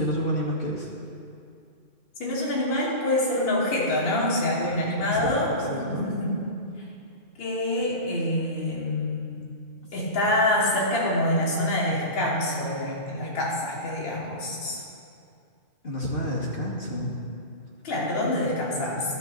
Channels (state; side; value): late; right; 2.8 ms